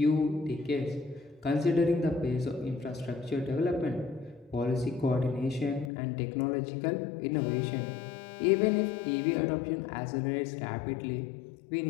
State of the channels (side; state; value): right; drops out; at 5.9 s